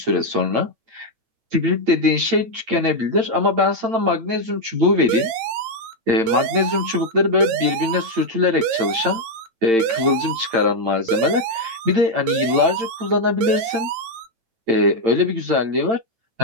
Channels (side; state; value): left; late; 8.8 ms